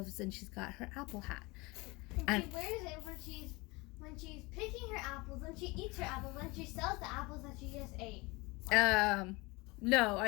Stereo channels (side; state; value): right; quieter; 24.7 dB